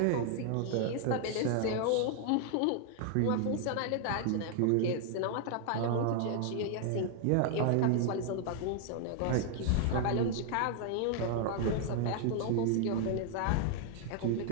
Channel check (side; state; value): both; different; correlation 0.00